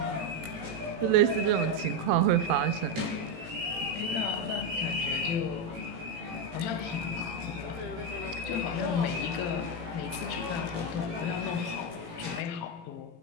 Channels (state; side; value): late; left; 18 ms